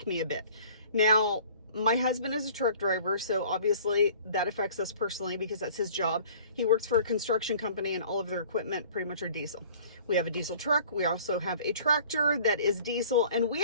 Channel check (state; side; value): inverted; both; correlation -0.49